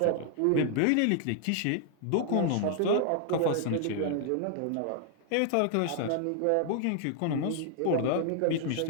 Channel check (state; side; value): different; both; correlation 0.00